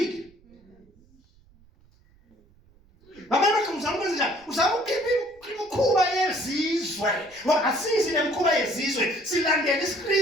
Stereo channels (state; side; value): noise; right; rumble, 30 dB below the sound